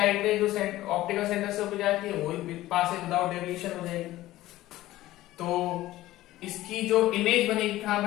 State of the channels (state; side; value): quieter; right; 16.0 dB